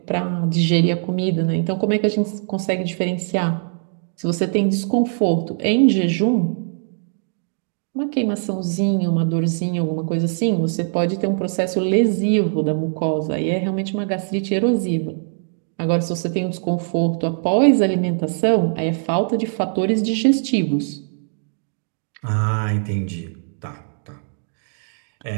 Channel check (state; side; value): silent; left; digital silence